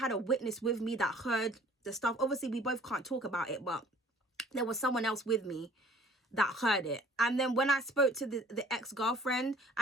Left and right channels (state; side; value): normal; both; correlation 0.53